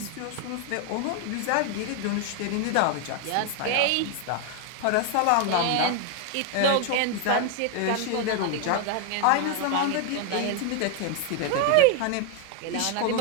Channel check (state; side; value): different; both; correlation 0.01